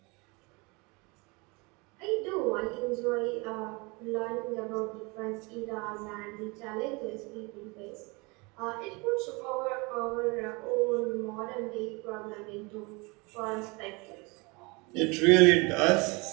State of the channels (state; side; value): quieter; left; 27.4 dB